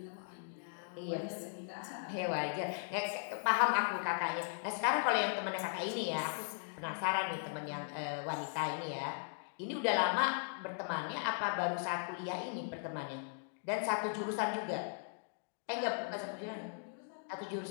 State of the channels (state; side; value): silent; right; digital silence